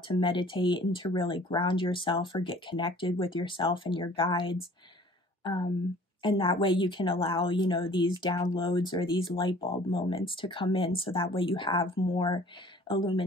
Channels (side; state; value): both; normal; correlation 0.51